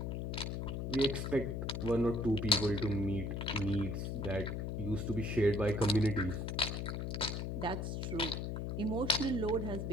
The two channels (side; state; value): left; noise; hum, 2 dB below the sound